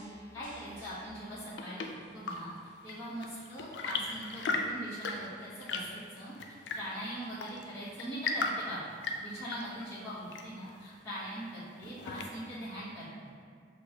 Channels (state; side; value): normal; both; correlation 0.21